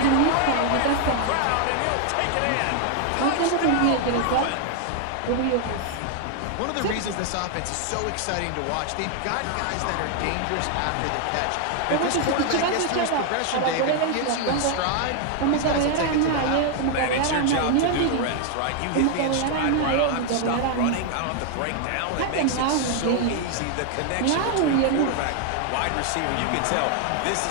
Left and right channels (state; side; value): different; both; correlation 0.00